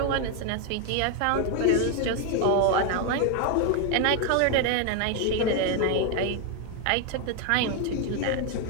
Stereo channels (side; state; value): both; different; correlation 0.01